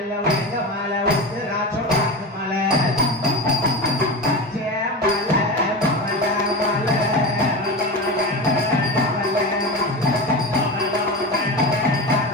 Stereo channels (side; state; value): both; normal; correlation 0.24